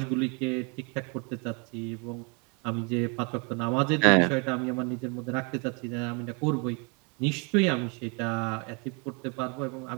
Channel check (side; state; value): left; quieter; 33.4 dB